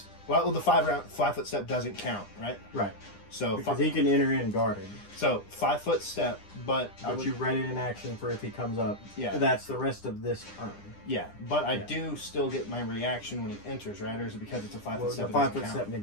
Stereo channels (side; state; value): right; late; 9.9 ms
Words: Well, the 5-foot step doesn't count, right? Right. So Because he can enter in guarded. So 5-foot step, but But you ready in action for if he comes up. Yeah. That's the rest of this turn. yeah, but I Yeah. do still get my reaction when he enters, right? Or is it because it's a 5-foot Well, step? the it doesn't 5-foot count? step